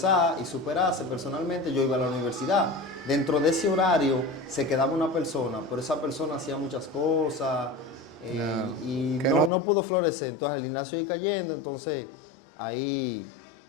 y superarse personalmente, yo iba a la universidad. Dentro de ese horario se quedaba una persona, pero esa persona hacía muchas cosas y no pudo florecer. Entonces el gimnasio iba cayendo, entonces ahí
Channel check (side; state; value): right; drops out; at 9.5 s